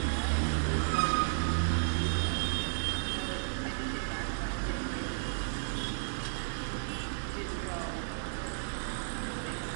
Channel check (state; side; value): silent; left; digital silence